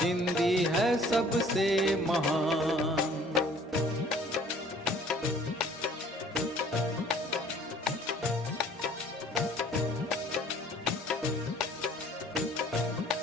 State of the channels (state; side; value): normal; both; correlation 0.54